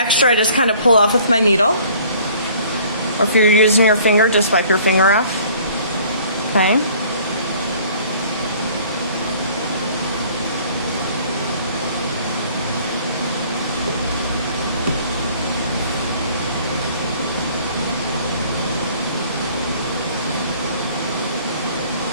I just kind of pull off with my needle, or if you're using your finger, just wipe your finger off. Okay.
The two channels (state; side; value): inverted; both; correlation -0.54